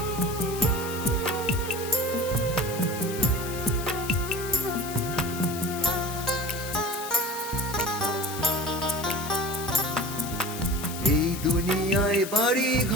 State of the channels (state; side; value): noise; left; hiss, 10 dB below the sound